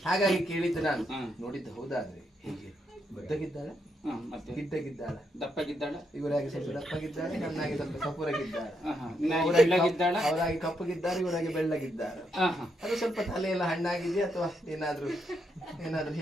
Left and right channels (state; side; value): normal; both; correlation 0.79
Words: ಹಾಗಾಗಿ ಕೇಳಿದ್ದು ನಾನು. ನೋಡಿದ್ದು ಹೌದಾದ್ರೆ ಹೇಗೆ ಬುದ್ಧಗಿದ್ದಾಳೆ, ಗಿಡ್ಡಗಿದ್ದಾಳ, ದಪ್ಪಗಿದ್ದಾಳ? ಇವರಾಗಿ ಸ್ವಲ್ಪ ದಪ್ಪಗಿದ್ದಾಳೆ, ನನ್ನಾಗಿ ಸ್ವಲ್ಪ ಕಪುರಗಿದ್ದಾಳೆ. ಅವರಾಗಿ ಕಪ್ಪಗಿದ್ದಾರೆ, ಇವರಾಗಿ ಬೆಳ್ಳಗಿದ್ದಾರೆ. ಅದು ಸ್ವಲ್ಪ ತಲೆ ಎಲ್ಲ ಹಣ್ಣಾಗಿದೆಯಾ ಅಥವಾ ಏನಾದ್ರೂ